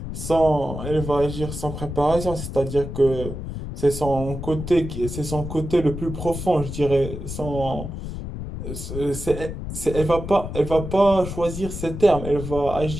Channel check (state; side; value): noise; left; rumble, 7 dB below the sound